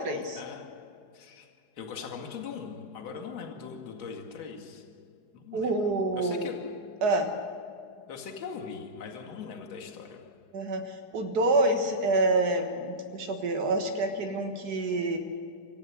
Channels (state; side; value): late; left; 4.8 ms